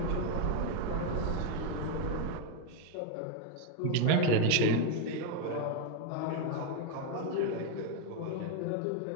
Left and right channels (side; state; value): both; different; correlation 0.01